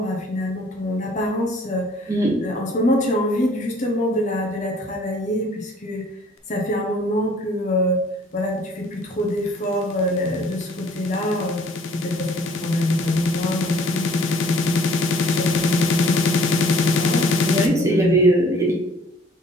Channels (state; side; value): normal; both; correlation 0.55